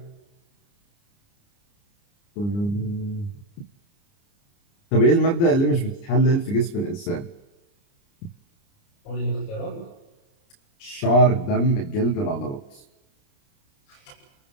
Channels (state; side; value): late; right; 29 ms